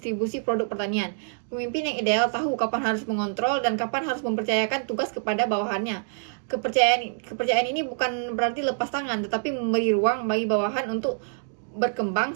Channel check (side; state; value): left; silent; digital silence